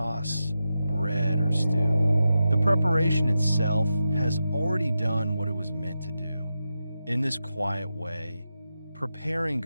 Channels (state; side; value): inverted; both; correlation -0.89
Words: bread, or stew. The preparation itself has already done what it was meant to do. In this quiet way, preparing